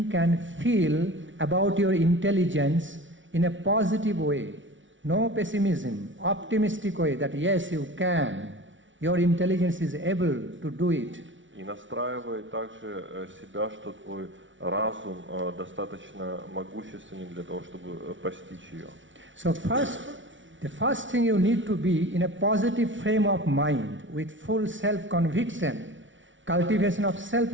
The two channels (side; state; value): left; late; 0.56 ms